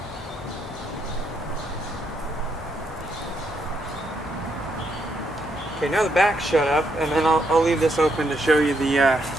Okay, now the back's shut up, and then I'll leave this open to show you the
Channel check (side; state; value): left; noise; hum, 23 dB below the sound